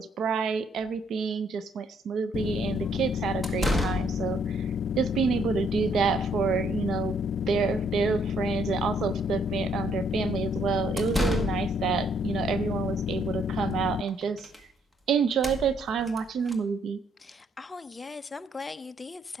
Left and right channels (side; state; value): both; normal; correlation 0.68